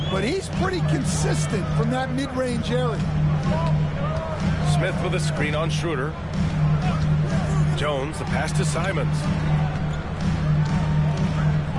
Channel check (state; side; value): identical; both; correlation 1.00